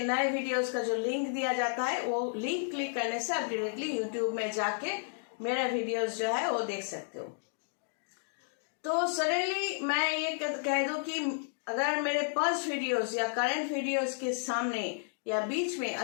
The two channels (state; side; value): silent; right; digital silence